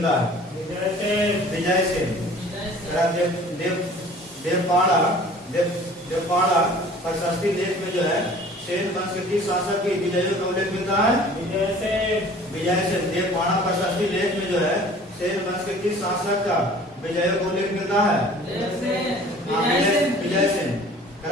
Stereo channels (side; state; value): both; normal; correlation 0.48